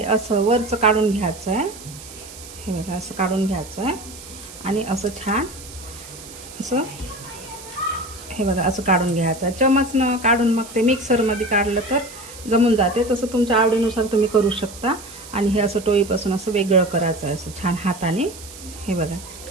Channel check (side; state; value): right; noise; hiss, 16 dB below the sound